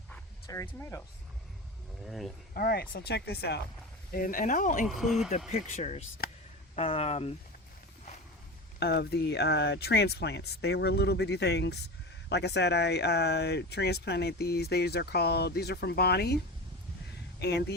cherry tomatoes. All right, so check this out, and I'll include the pictures of the transplants. They were little bitty things. Like I said, I transplanted these. These are from Bonnie, and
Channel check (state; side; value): normal; both; correlation 0.27